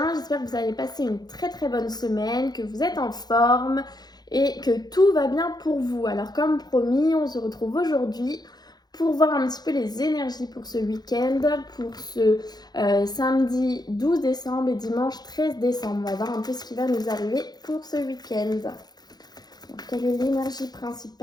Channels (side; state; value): right; late; 0.19 ms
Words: j'espère que vous allez passer une très bonne semaine, que vous êtes en forme et que tout va bien pour vous. Alors comme promis, on se retrouve aujourd'hui pour voir un petit peu les énergies pour ce week-end, pour ce samedi 12 décembre et dimanche 13 décembre. On va voir un peu ce qui va nous arriver pour ce week-end. Donc, quelle est l'énergie